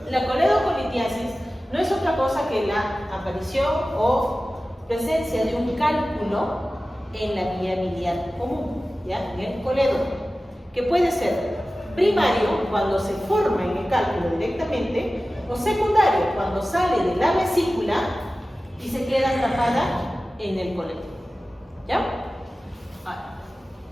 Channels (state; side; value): normal; both; correlation 0.96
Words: La coledocolitiasis no es otra cosa que la aparición o presencia de un cálculo en la vía biliar común, ¿ya? En el coledo, que puede ser primario, cuando se forma en el cálculo directamente, o secundario, cuando sale de la vesícula y se queda atrapada en el coledo. ¿Ya? Ahora,